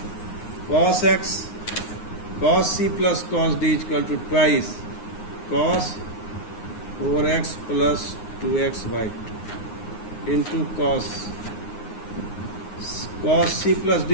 cos x cos C plus cos D is equal to twice cos 4x plus 2x by 2 into cos C plus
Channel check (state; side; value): late; right; 9.6 ms